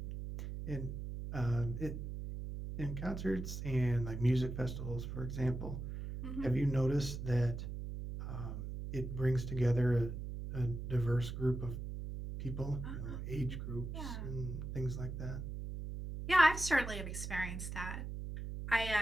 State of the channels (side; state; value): right; noise; hum, 6 dB below the sound